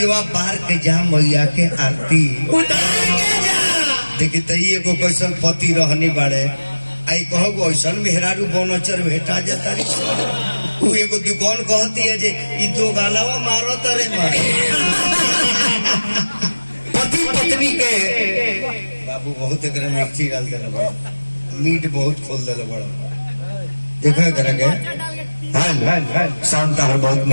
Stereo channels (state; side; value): inverted; both; correlation -1.00